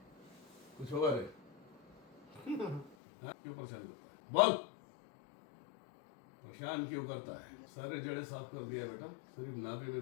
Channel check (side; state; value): right; drops out; at 3.0 s